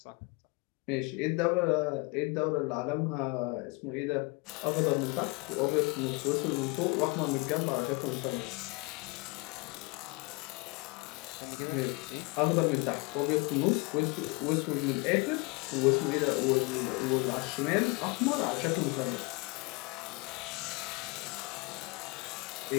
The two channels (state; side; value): quieter; right; 28.2 dB